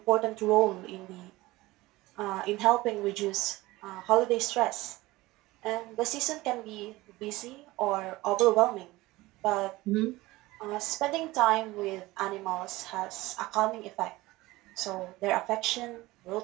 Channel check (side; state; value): left; quieter; 19.5 dB